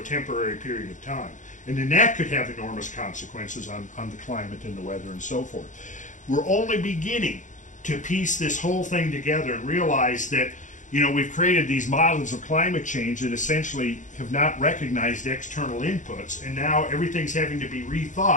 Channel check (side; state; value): right; late; 0.36 ms